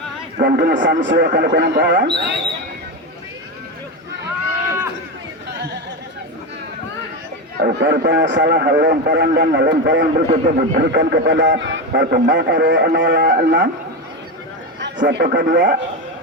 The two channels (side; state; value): both; normal; correlation 0.15